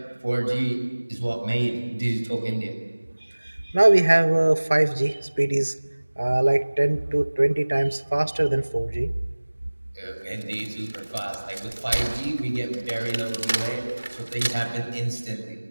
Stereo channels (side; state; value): both; inverted; correlation -1.00